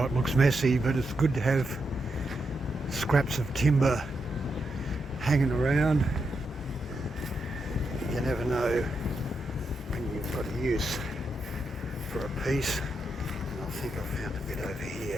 it looks messy, but it's good to have scraps of timber hanging around. You never know when you've got a use for a piece. And I think I found a bit over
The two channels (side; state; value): both; normal; correlation 0.84